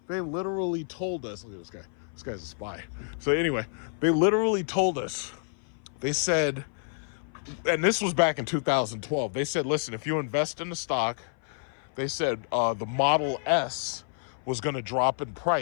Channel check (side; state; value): right; silent; 56 dB below the other